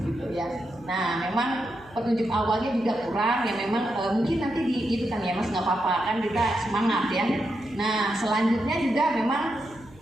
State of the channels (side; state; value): right; noise; hum, 24 dB below the sound